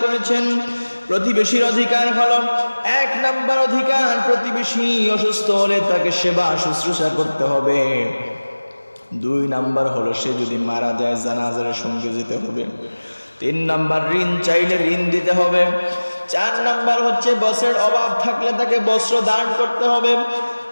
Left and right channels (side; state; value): both; inverted; correlation -1.00